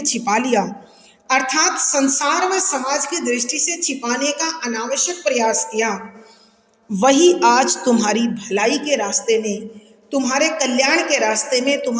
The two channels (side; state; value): both; identical; correlation 1.00